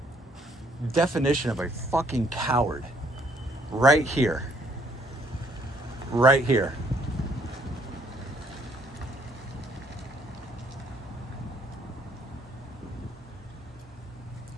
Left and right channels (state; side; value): normal; both; correlation 0.66